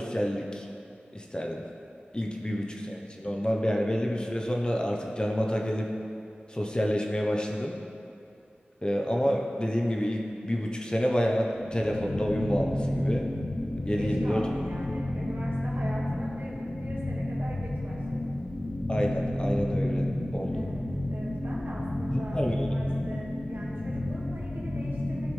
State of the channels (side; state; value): both; normal; correlation 0.97